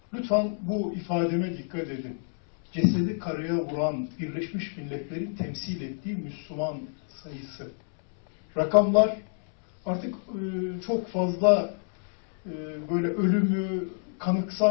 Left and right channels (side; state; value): right; silent; 60 dB below the other